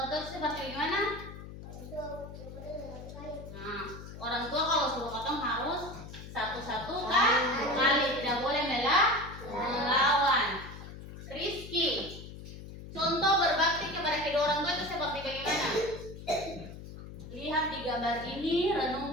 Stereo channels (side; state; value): left; noise; hum, 13 dB below the sound